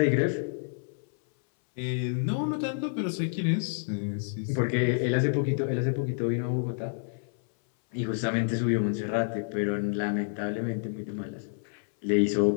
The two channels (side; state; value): right; silent; 59 dB below the other